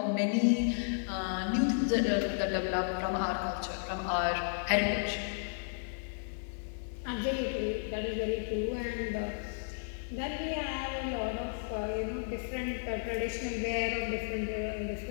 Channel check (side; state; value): right; silent; 55 dB below the other